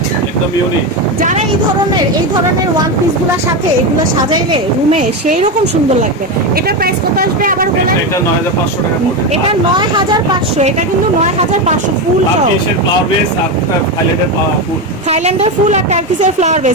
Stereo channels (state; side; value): normal; both; correlation 0.14